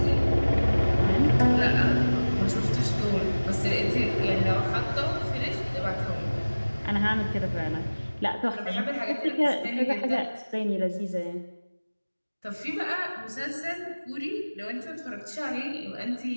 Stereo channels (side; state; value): both; inverted; correlation -1.00